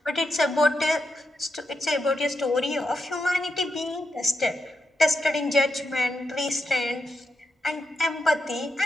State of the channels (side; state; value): both; normal; correlation 0.85